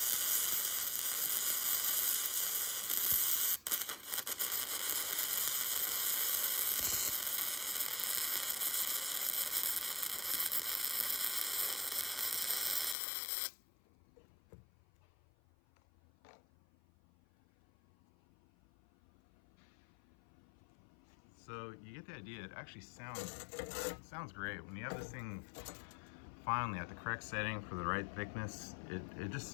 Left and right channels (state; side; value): drops out; right; at 13.0 s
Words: So you get the idea. It actually sounds great. When you have this thing finally at the correct setting for the right thickness, it just